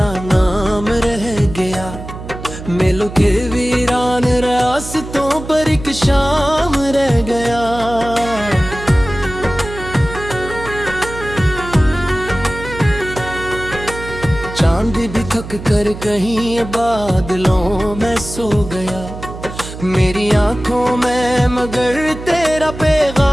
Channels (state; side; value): noise; right; hum, 11 dB below the sound